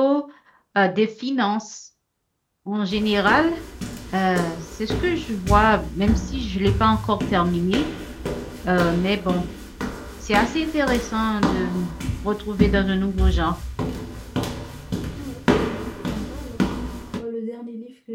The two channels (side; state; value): both; identical; correlation 1.00